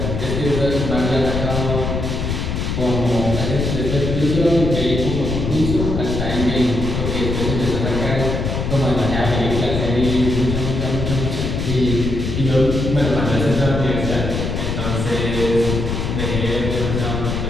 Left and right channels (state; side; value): noise; left; rumble, 2 dB below the sound